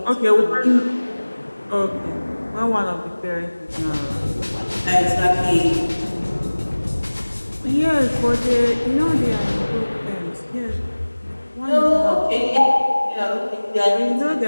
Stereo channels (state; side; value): inverted; both; correlation -1.00